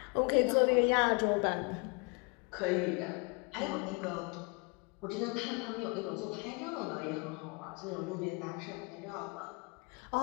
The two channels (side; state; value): right; quieter; 31.3 dB